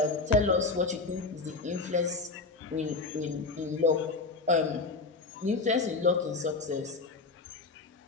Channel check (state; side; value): quieter; right; 3.8 dB